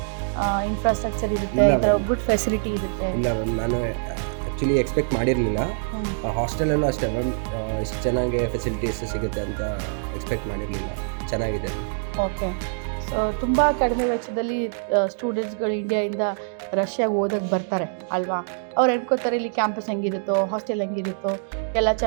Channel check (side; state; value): left; silent; digital silence